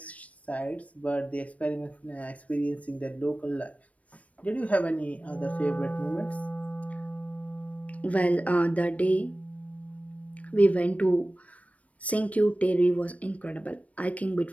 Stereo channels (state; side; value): late; right; 0.066 ms